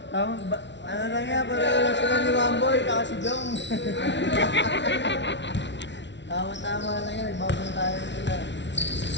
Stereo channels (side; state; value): right; late; 0.52 ms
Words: Ano lang yan, pareho lang sila ni Wamboy, kaka si Jong. Tama-tama lang yan, nagbabantayan sila.